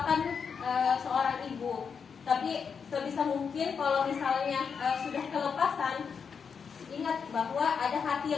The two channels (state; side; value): quieter; right; 6.3 dB